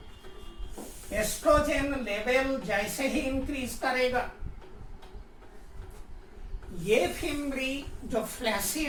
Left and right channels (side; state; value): both; identical; correlation 1.00